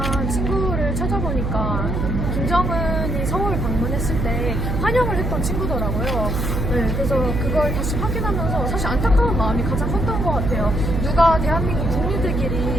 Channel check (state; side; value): noise; right; hum, 1 dB below the sound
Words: 친구를 찾아보니까 김정은이 서울 방문했을 때 환영을 했던 친구더라고요. 네, 그래서 그걸 다시 확인하면서 사실 안타까운 마음이 가장 컸던 것 같아요. 누가 대한민국